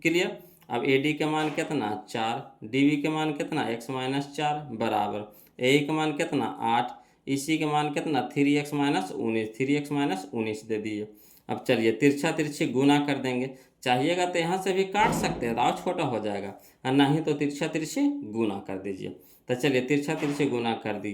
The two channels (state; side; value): identical; both; correlation 1.00